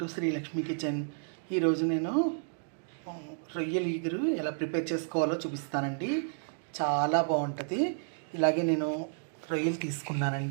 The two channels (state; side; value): silent; left; digital silence